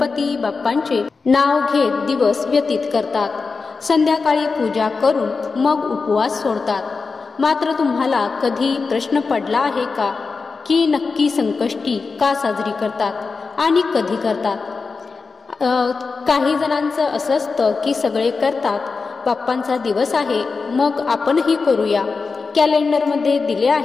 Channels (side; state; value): right; quieter; 4.5 dB